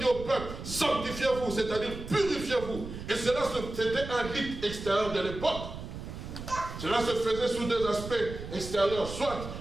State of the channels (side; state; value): right; noise; rumble, 9 dB below the sound